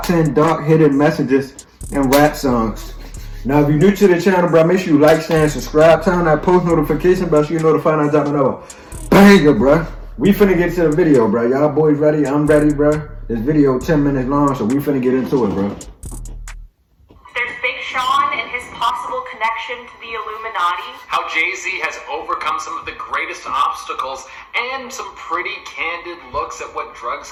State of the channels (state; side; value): identical; both; correlation 1.00